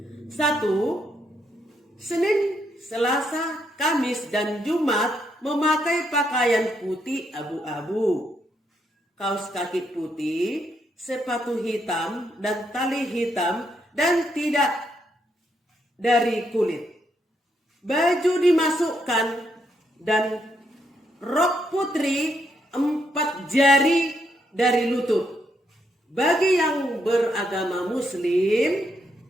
1. Senin, Selasa, Kamis, dan Jumat memakai pakaian putih abu-abu, kaos kaki putih, sepatu hitam dan tali hitam dan tidak dari kulit. Baju dimasukkan dan rok putri 4 jari dari lutut. Bagi yang beragama Muslim,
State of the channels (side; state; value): both; normal; correlation 0.77